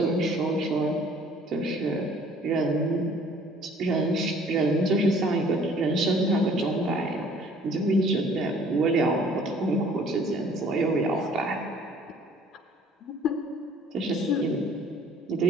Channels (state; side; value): normal; both; correlation 0.55